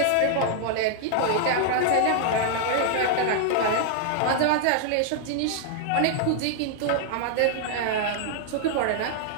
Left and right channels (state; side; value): different; both; correlation -0.01